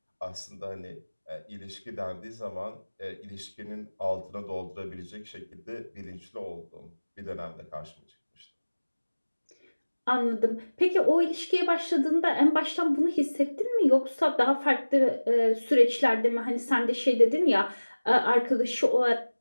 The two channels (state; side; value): inverted; both; correlation -1.00